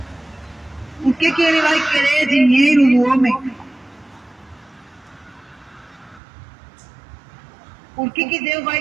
Por que Ele vai querer dinheiro do homem? Por que Deus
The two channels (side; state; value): left; drops out; at 6.2 s